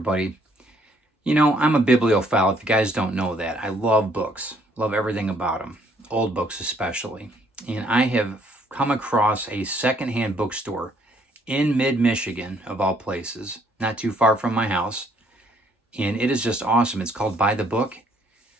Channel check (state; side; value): normal; both; correlation 0.66